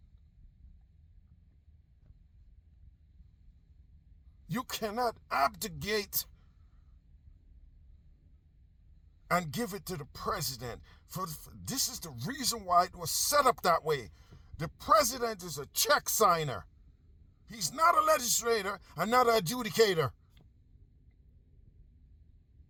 You cannot abdicate and give it to the president. This is the reason why it was set up that way. The president is a check signer. He's not a legislator and not an adjudicator.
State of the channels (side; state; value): both; identical; correlation 1.00